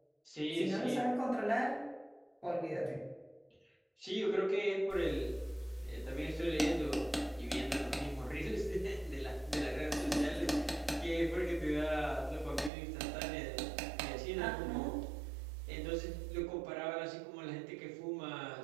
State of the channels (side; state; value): left; drops out; at 12.7 s